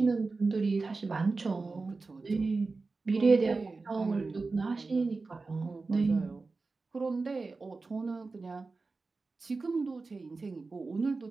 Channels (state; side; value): quieter; left; 3.9 dB